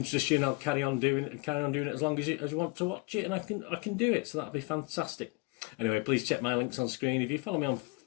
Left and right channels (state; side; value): quieter; right; 27.5 dB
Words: you, and I'll carry on doing it as long as you want to watch it, and I can do it, so that'll be fantastic. Anyway, please check my links on screen. If you follow me on